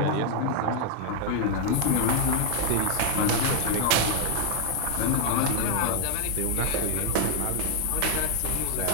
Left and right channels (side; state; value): both; different; correlation 0.00